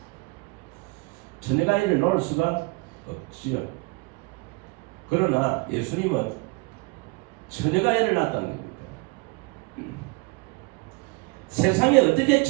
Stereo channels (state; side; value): quieter; left; 27.4 dB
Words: 처녀가 애를 낳을 수가 없지요. 그러나 예수님은 처녀가 애를 낳았다는 겁니다. 세상에 어떻게